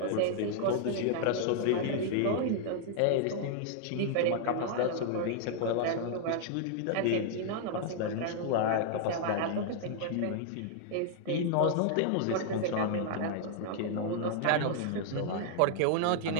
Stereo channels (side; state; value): both; different; correlation -0.01